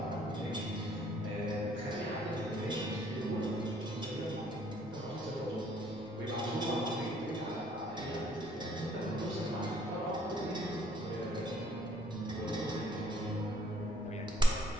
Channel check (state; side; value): normal; both; correlation 0.62